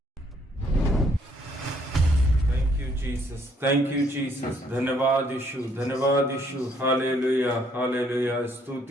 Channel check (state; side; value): normal; both; correlation 0.67